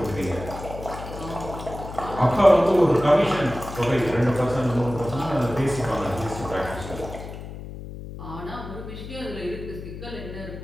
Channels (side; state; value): left; noise; hum, 11 dB below the sound